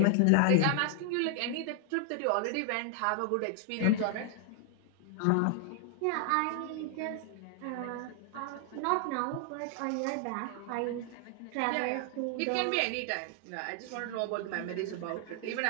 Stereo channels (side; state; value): both; different; correlation 0.00